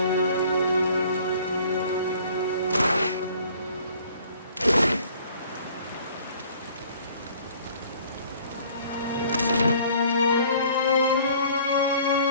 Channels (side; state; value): both; inverted; correlation -0.54